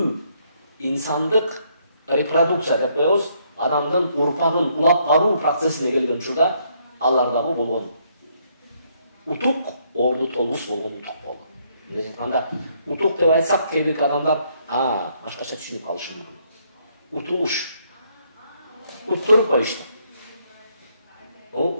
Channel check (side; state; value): both; inverted; correlation -0.70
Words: инсандык репродукция деп коебуз, адамдын урпагын улап баруу процессине келген учурда алардагы болгон утук орду толугус болгон утук болду. Эмне айтканда, утук деп айтсак, кээ бир адамдар башкача түшүнүп калышы мүмкүн. Утулуш. Уттуруп коюшту.